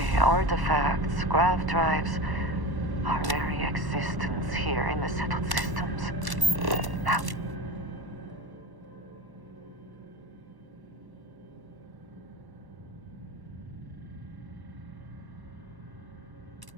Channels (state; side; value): late; left; 1.1 ms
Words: artifacts, grav drives, our very existence here in the settled systems. Now,